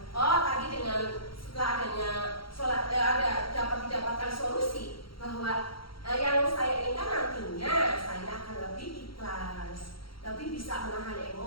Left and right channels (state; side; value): late; right; 0.74 ms